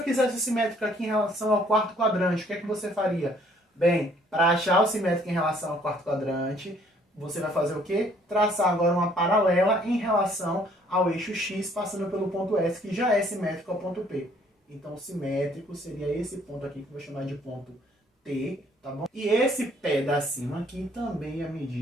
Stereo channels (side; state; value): both; normal; correlation 0.62